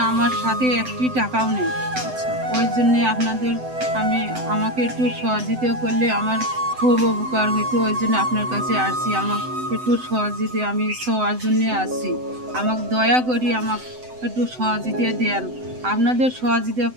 আমার সাথে একটি টাকাও নেই। আচ্ছা ওই জন্যে আপনাদের আমাকে একটু সহযোগিতা করলে আমার খুব উপকার হইতো। ওই জন্য আপনার কাছে আসছি, আমাকে একটু সহযোগিতা, আমি সবার জন্যে আসছি। আমাকে দয়া করি আমাকে একটু সহযোগিতা দেন। আপনাদের সহযোগিতা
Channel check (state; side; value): late; left; 7.9 ms